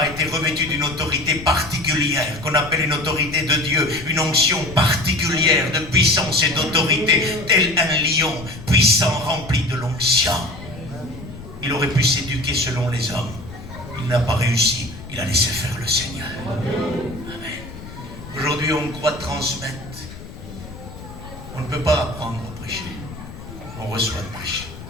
été revêtu d'une autorité particulière, qu'on appelle une autorité de Dieu, une onction particulière de puissance et d'autorité, tel un lion puissant rempli de l'onction. Il aurait pu s'éduquer selon les hommes. Il n'a pas réussi. Il a laissé faire le Seigneur. Amen. Aujourd'hui, on croit transmettre. On ne peut pas apprendre à prêcher. On reçoit de prêcher.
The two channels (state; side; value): noise; left; rumble, 14 dB below the sound